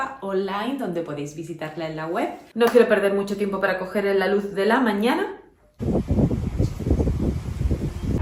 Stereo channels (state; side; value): identical; both; correlation 1.00